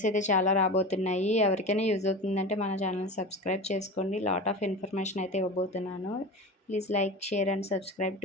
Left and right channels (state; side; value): normal; both; correlation 0.29